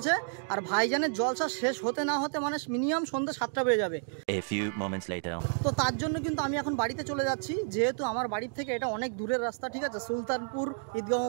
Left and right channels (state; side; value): silent; left; digital silence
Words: আর ভাইজানের জলসা শেষ হতে না হতে মানে মিনিমাম সন্ধ্যা 7টা বেজে যাবে। তো তার জন্য কিন্তু আমি এখন বাড়িতে চলে যাচ্ছি, যেহেতু আমার বাড়ির থেকে এটা অনেক দূরের রাস্তা, ঠিক আছে, সুলতানপুর ঈদগাহ